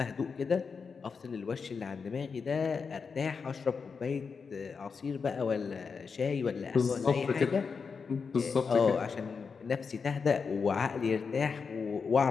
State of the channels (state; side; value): quieter; right; 5.4 dB